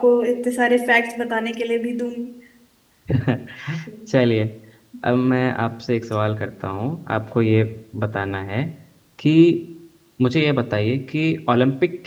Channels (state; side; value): identical; both; correlation 1.00